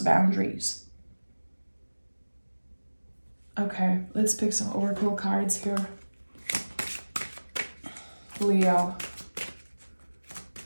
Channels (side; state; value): both; inverted; correlation -1.00